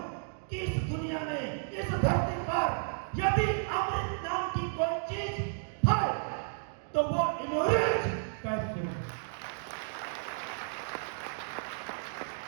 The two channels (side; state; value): left; silent; digital silence